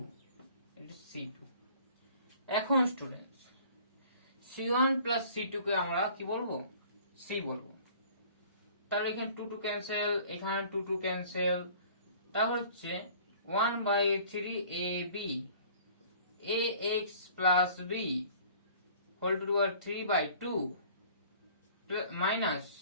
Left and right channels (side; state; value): both; inverted; correlation -0.51